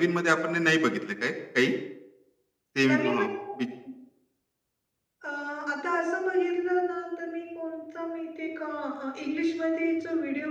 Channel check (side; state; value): both; identical; correlation 1.00